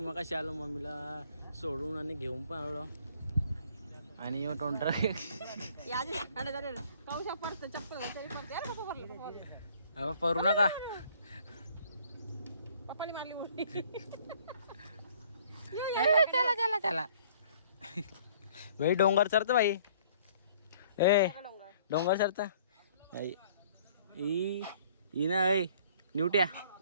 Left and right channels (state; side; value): inverted; both; correlation -0.58